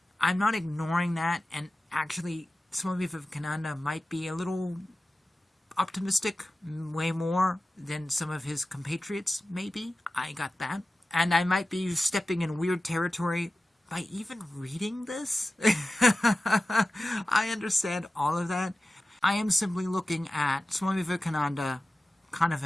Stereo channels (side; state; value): both; normal; correlation 0.95